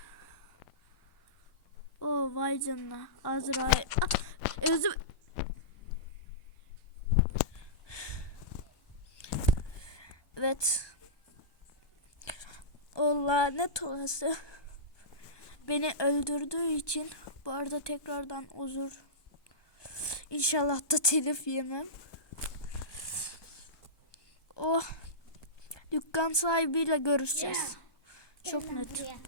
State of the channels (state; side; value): late; right; 1.2 ms